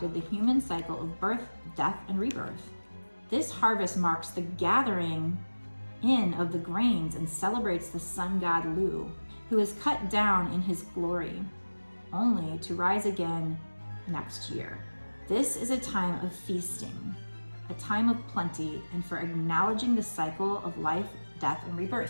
the human cycle of birth, death, and rebirth. This harvest marks the gathering in of the grains and celebrates the sun god Lu, who is cut down in his glory, only to rise again next year. This is a time of feasting, a time of plenty, and for acknowledging the cycle of life, death, and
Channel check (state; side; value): inverted; both; correlation -1.00